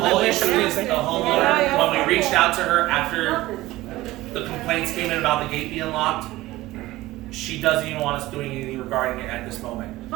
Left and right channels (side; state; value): left; quieter; 17.7 dB